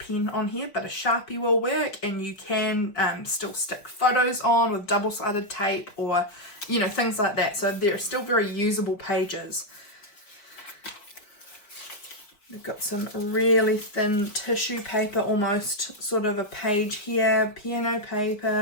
on here, but a Sharpie will work, and you can still stick photos on with double-sided tape or, you know, things like that. So they're still very usable pages. We've got some really thin tissue paper, almost sort of a page here, piano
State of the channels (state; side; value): late; right; 4.9 ms